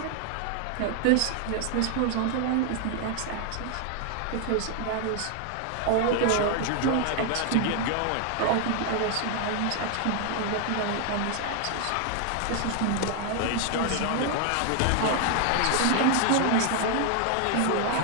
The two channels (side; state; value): both; different; correlation 0.00